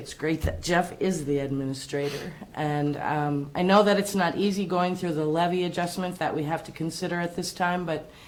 great that Jeff is the administrator. And I know that it's not easy going through the levy adjustment that we have to consider at this time, but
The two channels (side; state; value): both; identical; correlation 1.00